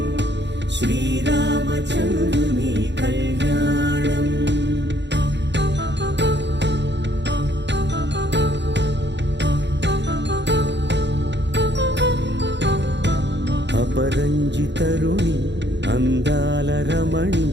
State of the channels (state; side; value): late; left; 0.51 ms